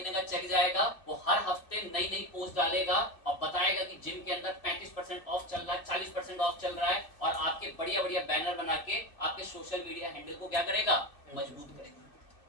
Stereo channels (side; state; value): right; late; 2.6 ms